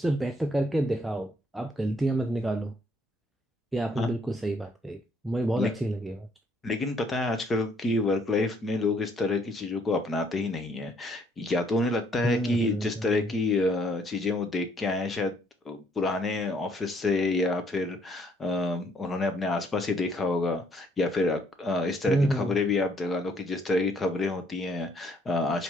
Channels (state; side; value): normal; both; correlation 0.66